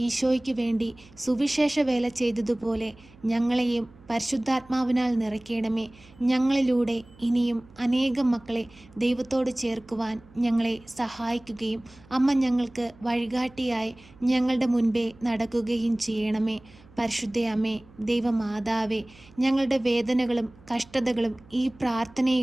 ഈശോയ്ക്ക് വേണ്ടി സുവിശേഷ വേല ചെയ്തതുപോലെ ഞങ്ങളെയും പരിശുദ്ധാത്മാവിനാൽ നിറയ്ക്കണമേ. ഞങ്ങളിലൂടെ ഇനിയും അനേകം മക്കളെ ദൈവത്തോട് ചേർക്കുവാൻ ഞങ്ങളെ സഹായിക്കുകയും അമ്മ ഞങ്ങൾക്ക് വഴികാട്ടിയായി ഞങ്ങളുടെ മുൻപേ നടക്കുകയും ചെയ്യണമേ. പരിശുദ്ധയമ്മേ, ദൈവമാതാവേ, ഞങ്ങളുടെ വേദനകളും കഷ്ടതകളും ഈ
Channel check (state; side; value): noise; right; hum, 25 dB below the sound